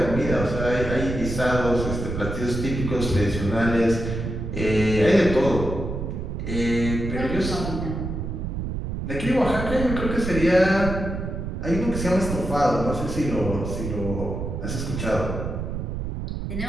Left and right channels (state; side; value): noise; right; rumble, 4 dB below the sound